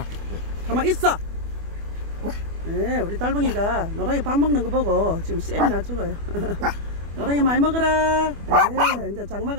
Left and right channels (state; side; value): late; left; 25 ms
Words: 가만 있어. 네, 우리 달방이가 노랑이 밥 먹는 거 보고 지금 쌤이 나 죽어요. 노랑이 많이 먹어라. 네, 이제